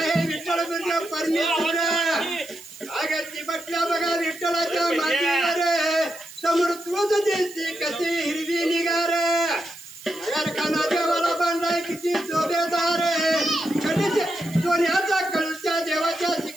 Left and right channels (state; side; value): noise; right; hiss, 17 dB below the sound